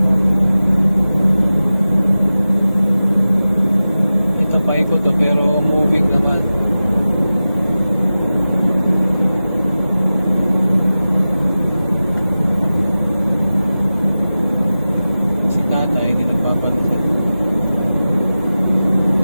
Ito paikot to pero moving naman. Si tatay hindi nagpapalusot.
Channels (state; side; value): inverted; both; correlation -0.95